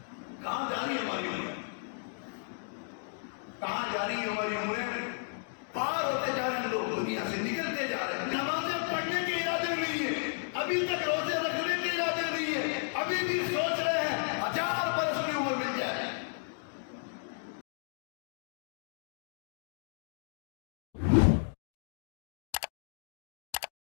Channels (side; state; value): right; silent; digital silence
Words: کہاں جا رہی ہے ہماری عمریں؟ کہاں جا رہی ہے ہماری عمریں؟ پار ہوتے جا رہے ہیں لوگ، دنیا سے نکلتے جا رہے ہیں۔ نمازیں پڑھنے کے ارادے نہیں ہے، ابھی تک روزے رکھنے کے ارادے نہیں ہے، ابھی بھی سوچ رہے ہیں 1000 برس کی عمر مل جائے۔